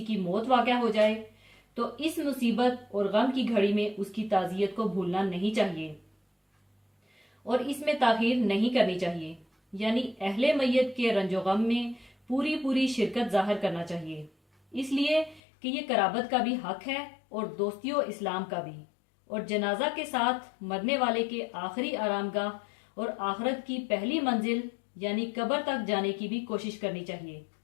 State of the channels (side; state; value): right; drops out; at 15.4 s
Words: की मौत वाक़या हो जाए तो इस मुसीबत और गम की घड़ी में उसकी ताज़ियत को भूलना नहीं चाहिए और इसमें ताखीर नहीं करनी चाहिए। यानी अहले मैयत के रंजो गम में पूरी पूरी शिरकत जाहिर करना चाहिए, इसलिए कि ये कराबत का भी हक है और दोस्तियों इस्लाम का भी। और जनाजा के साथ मरने वाले के आखिरी आरामगाह और आखिरत की पहली मंजिल यानी कब्र तक जाने की भी कोशिश करनी चाहिए,